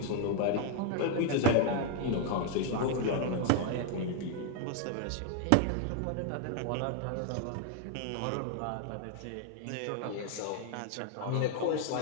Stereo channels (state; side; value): different; both; correlation 0.00